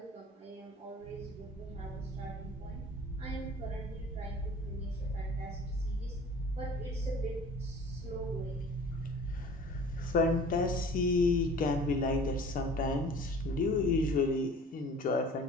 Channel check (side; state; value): both; normal; correlation 0.46